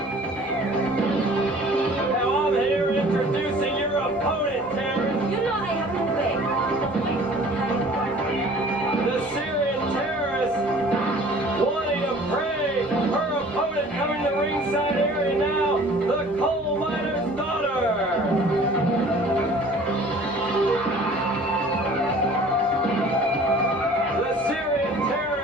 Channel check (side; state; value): both; normal; correlation 0.49